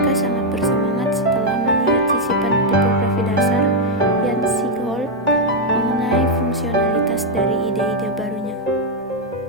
sangat bersemangat setelah melihat sisipan tipografi dasar Jan Siegholt mengenai fungsionalitas dari ide-ide barunya.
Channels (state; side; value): normal; both; correlation 0.00